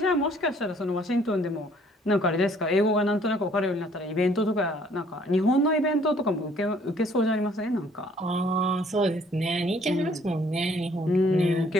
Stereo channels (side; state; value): both; normal; correlation 0.60